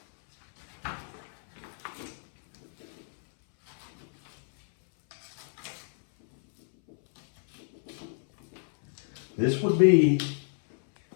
This would be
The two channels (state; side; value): silent; right; 58 dB below the other